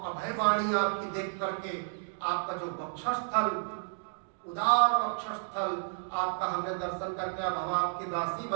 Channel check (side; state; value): left; silent; digital silence